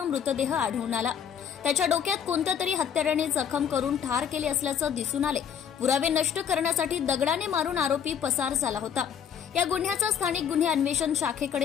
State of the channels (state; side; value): quieter; right; 8.2 dB